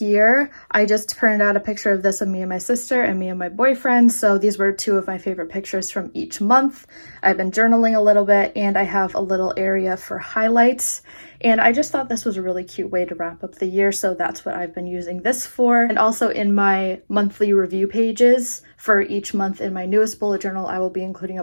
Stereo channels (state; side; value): inverted; both; correlation -1.00